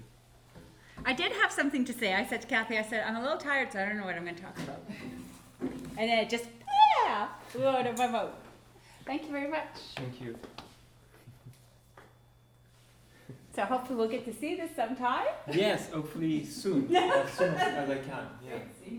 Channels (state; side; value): identical; both; correlation 1.00